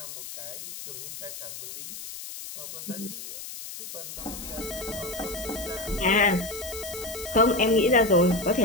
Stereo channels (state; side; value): noise; left; hiss, 10 dB below the sound